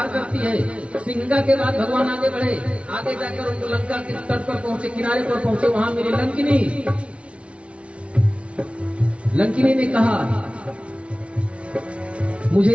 करती है। सिंहिका के बाद भगवान आगे बढ़े, आगे जाकर उनको लंका के तट पर पहुंचे, किनारे पर पहुंचे। वहां मिली लंकिनी। लंकिनी ने कहा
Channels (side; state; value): left; late; 0.061 ms